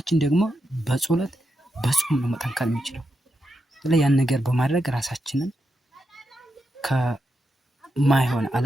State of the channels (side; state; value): both; normal; correlation 0.85